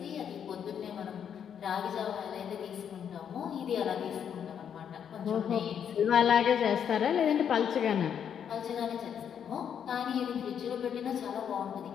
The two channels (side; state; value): right; quieter; 8.3 dB